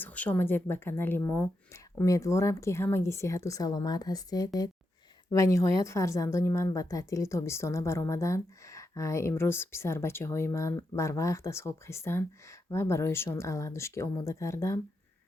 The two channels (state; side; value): normal; both; correlation 0.85